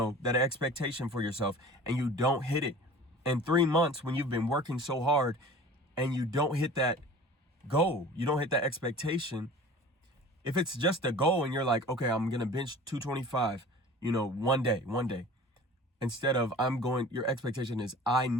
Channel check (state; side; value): normal; both; correlation 0.42